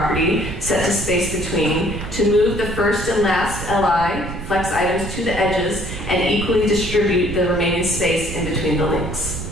set to space between to move the first and last LI flex items to the edges and equally distribute the remaining space in between the links.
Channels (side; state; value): right; noise; rumble, 9 dB below the sound